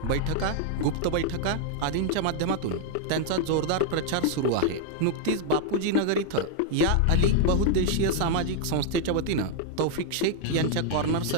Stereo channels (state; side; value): different; both; correlation 0.00